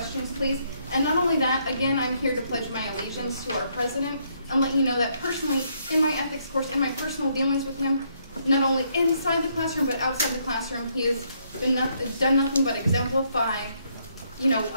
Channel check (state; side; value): inverted; both; correlation -0.72